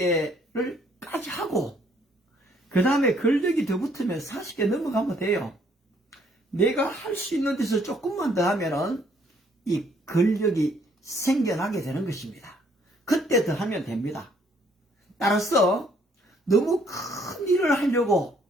까지 하고 그 다음에 근력이 더 붙으면 40개 넘어가면 돼요. 내가 할 수 있는 데서 조금만 더 하면은 이 근력이 생겨나게 되는 것입니다. 그때 더 하면 됩니다. 따라서 너무 큰 일을 하려고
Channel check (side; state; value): both; normal; correlation 0.65